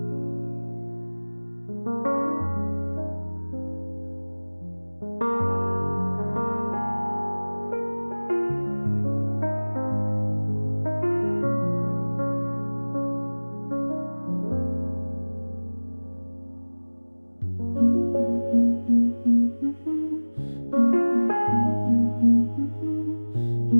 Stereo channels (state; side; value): inverted; both; correlation -1.00